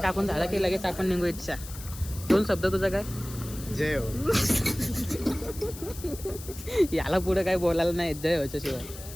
झालं की लगेच आपण निघू इच्छा. 2 शब्द तुझा काय? जय हो. याला पुढे काय बोलायला नाही जय व्हायच्या शिवाय.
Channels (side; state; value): left; noise; hiss, 14 dB below the sound